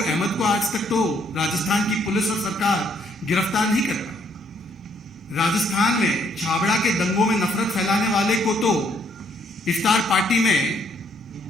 अहमद को आज तक तो राजस्थान की पुलिस और सरकार गिरफ्तार नहीं कर पाई। राजस्थान में छाबड़ा के दंगों में नफरत फैलाने वाले को तो इफ्तार पार्टी में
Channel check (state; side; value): normal; both; correlation 0.69